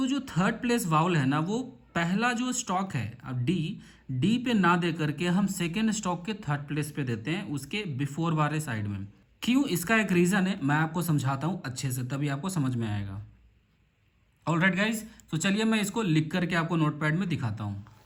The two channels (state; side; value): identical; both; correlation 1.00